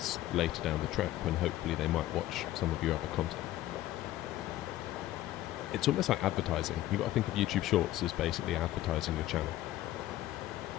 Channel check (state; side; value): quieter; right; 14.7 dB